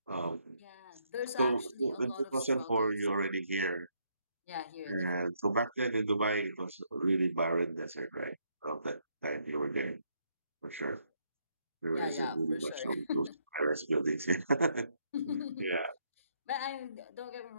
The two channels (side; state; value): both; inverted; correlation -0.73